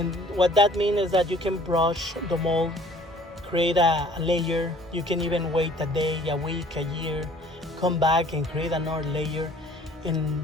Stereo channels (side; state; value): both; normal; correlation 0.53